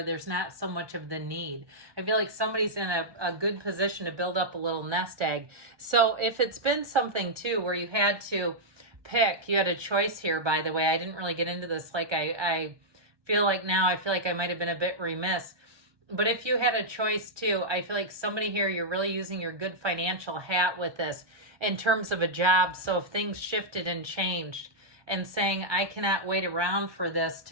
there's not so much of the need. I feel like somebody's in a good position to build up a little nest egg. So if it's been something too, where you had to pick, you had a choice here, by the way, I didn't really get into this. Like I feel like now, I feel like I might've been a bit remiss, but if you had a choice too, I feel like somebody here, you're really using your good financial hat with this in terms of a job. So if things shifted and changed and saying, I cannot wait around for this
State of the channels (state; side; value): late; left; 1.2 ms